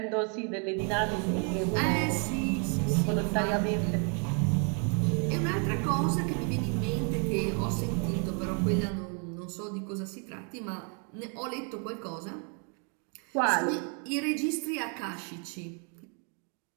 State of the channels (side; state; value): left; quieter; 39.4 dB